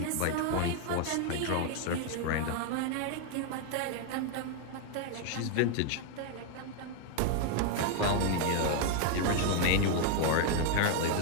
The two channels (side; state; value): both; different; correlation 0.01